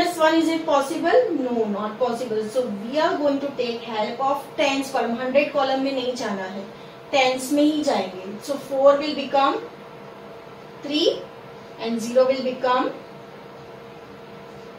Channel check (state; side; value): identical; both; correlation 1.00